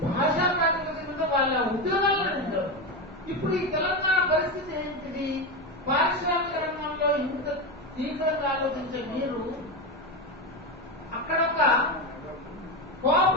భాషా ప్రాతిపదికతో వాళ్ళ ఉద్యోగాల్లో ఉంటారు. ఇప్పుడు ఈ తెలంగాణ పరిస్థితి ఏంటిది? పారిశ్రామిక రంగంలో ఇంత తీవ్రంగా ఆలోచించే మీరు అక్కడ ఒక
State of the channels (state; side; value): normal; both; correlation 0.15